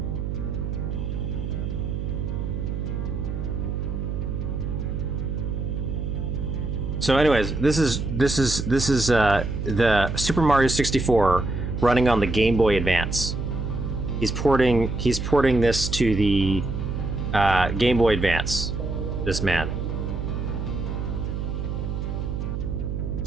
So anyways, this is the Super Mario 64 running on the Game Boy Advance. He's porting this to the Game Boy Advance. This man.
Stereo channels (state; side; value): noise; right; hum, 3 dB below the sound